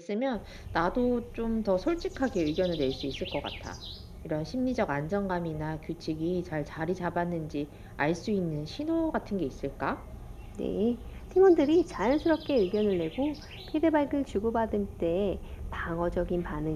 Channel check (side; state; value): both; identical; correlation 1.00